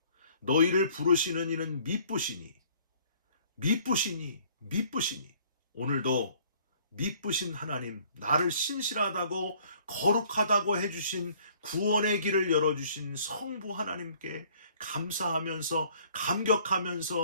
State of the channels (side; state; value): both; inverted; correlation -0.58